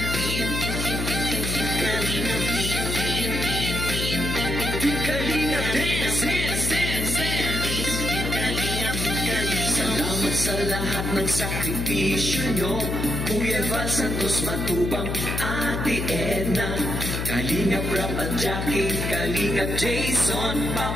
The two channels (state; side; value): noise; left; hum, 2 dB below the sound